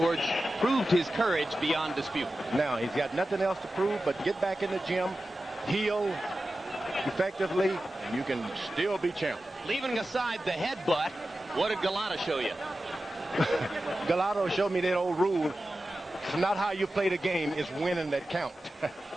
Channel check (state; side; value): normal; both; correlation 0.94